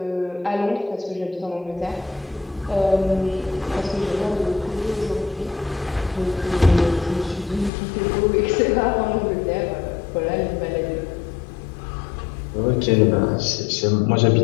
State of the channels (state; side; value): drops out; right; at 7.7 s